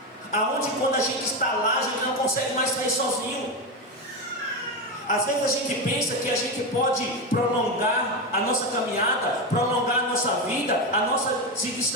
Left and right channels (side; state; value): both; normal; correlation 0.14